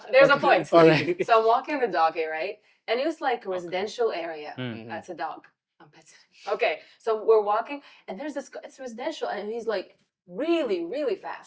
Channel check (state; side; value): identical; both; correlation 1.00